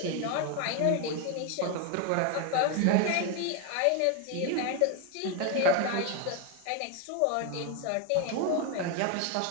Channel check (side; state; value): both; different; correlation 0.01